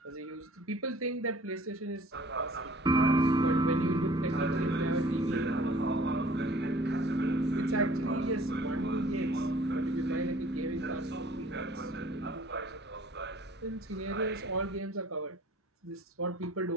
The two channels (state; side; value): normal; both; correlation 0.52